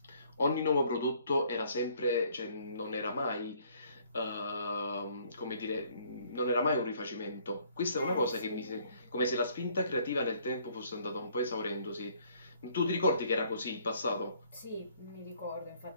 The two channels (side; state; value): both; inverted; correlation -0.62